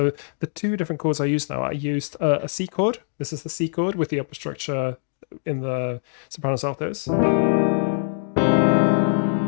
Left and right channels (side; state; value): right; silent; digital silence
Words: the two different chords I used now, I used a C chord. This is the C chord with the upper structure in the sopranos altos.